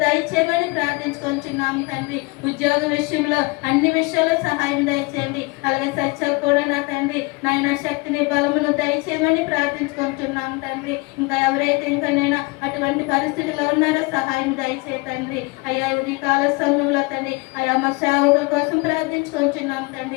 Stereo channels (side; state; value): right; quieter; 26.6 dB